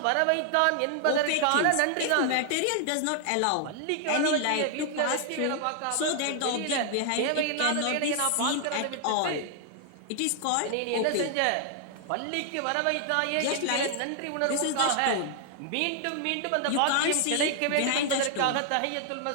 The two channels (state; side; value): different; both; correlation 0.00